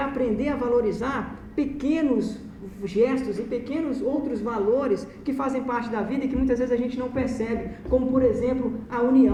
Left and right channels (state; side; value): identical; both; correlation 1.00